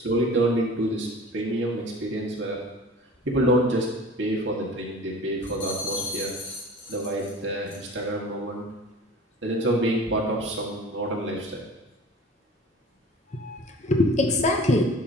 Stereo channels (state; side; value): normal; both; correlation 0.42